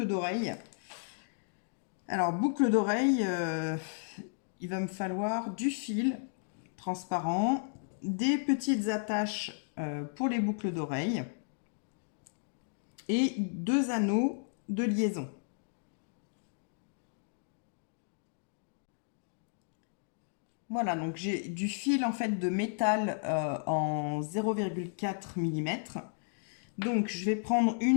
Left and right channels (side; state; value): right; silent; digital silence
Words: d'oreilles. Alors, boucles d'oreilles, il va me falloir du fil transparent, des petites attaches pour les boucles d'oreilles et 2 anneaux de liaison. Voilà, donc j'ai du fil en fait de métal en 0,4 mm. Donc je vais prendre